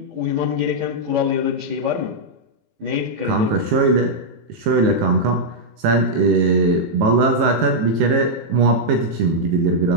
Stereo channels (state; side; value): late; left; 18 ms